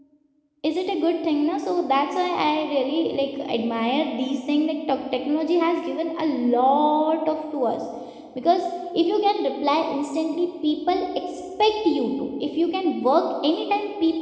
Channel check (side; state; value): both; identical; correlation 1.00